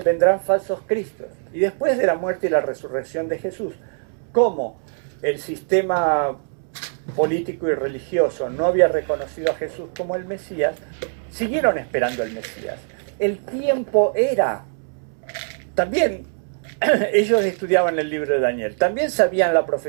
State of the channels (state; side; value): silent; left; 64 dB below the other